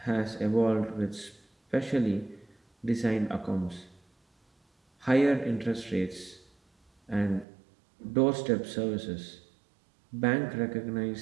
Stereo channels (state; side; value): drops out; left; at 7.5 s